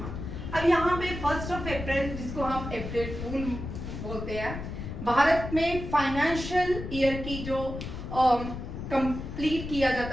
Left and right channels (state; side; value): noise; left; rumble, 7 dB below the sound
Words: अब यहाँ पे 1 अप्रैल, जिसको हम अप्रैल फूल बोलते हैं, भारत में फाइनेंशियल ईयर की जो कंप्लीट किया